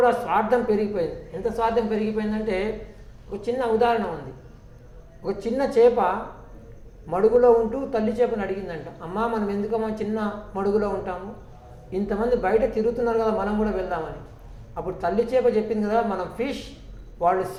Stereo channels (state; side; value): identical; both; correlation 1.00